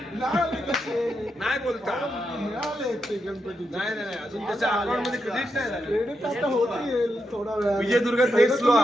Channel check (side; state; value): both; normal; correlation 0.84